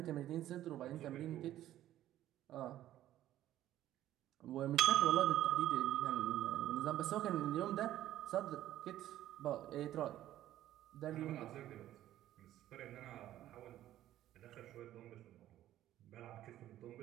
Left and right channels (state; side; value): quieter; left; 13.1 dB